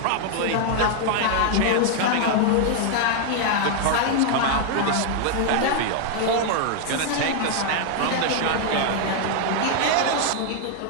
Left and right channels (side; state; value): both; different; correlation 0.00